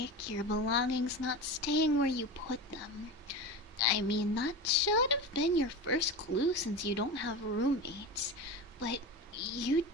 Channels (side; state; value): both; normal; correlation 0.26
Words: your belongings not staying where you put them. I mean, that should have been your first clue since you don't have roommates. But you